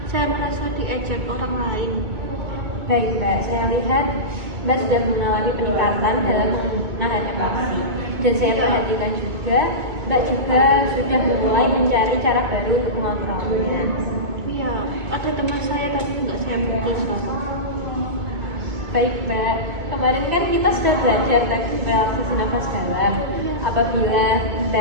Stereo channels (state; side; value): late; left; 2.2 ms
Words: saya merasa diejek orang lain. Baik Mbak, saya lihat Mbak sudah mengalami peningkatan dalam menahan emosi. Dan saya perhatikan juga, Mbak juga sudah mulai mencari cara baru untuk mengontrolnya. Iya, ada teman saya tapi nggak saya pukul sekarang. Baik Mbak, kemarin kan kita sudah belajar teknik relaksasi nafas dalam. Apabila